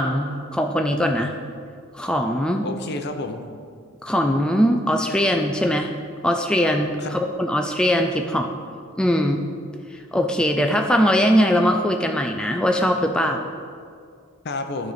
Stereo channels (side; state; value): both; normal; correlation 0.75